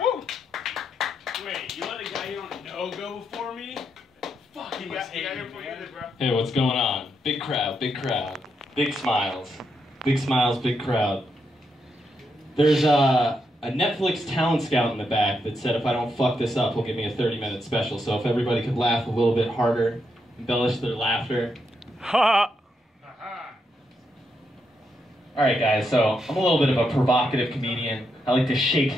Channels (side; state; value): both; normal; correlation 0.81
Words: Wait, you let a guy you don't know go before me? Fuck, you got here before you did, bro. Hey, what's going on? Big crowd, big crowd. Big smiles. Big smiles, big crowd. There's a Netflix talent scout in the back that said if I don't fuck this up, he'll give me a 30-minute special. So if everybody could laugh a little bit harder, embellish their laughter. Ha! Alright guys, so I'm a little bit of a provocative comedian. I like to